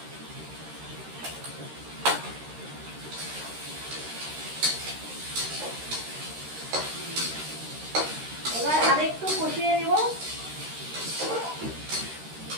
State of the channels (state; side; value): late; left; 13 ms